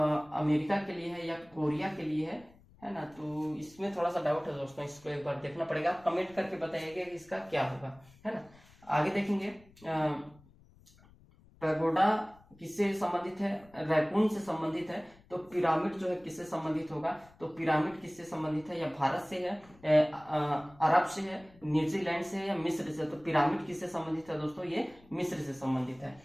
के लिए है, या कोरिया के लिए है ना। तो इसमें थोड़ा सा डाउट है दोस्तों, इसको एक बार देखना पड़ेगा। कमेंट करके बताइएगा कि इसका क्या होगा, है ना। आगे देखेंगे, पैगोडा किससे संबंधित है? रैकून से संबंधित है। तो पिरामिड जो है किससे संबंधित होगा? तो पिरामिड किससे संबंधित है? या भारत से है, अरब से है, न्यूजीलैंड से है, या मिस्र से? तो पिरामिड किससे संबंधित है दोस्तों? ये मिस्र से संबंधित है,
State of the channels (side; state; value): left; noise; rumble, 26 dB below the sound